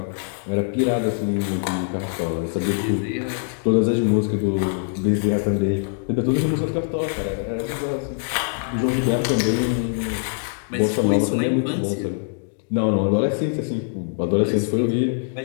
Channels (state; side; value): silent; right; digital silence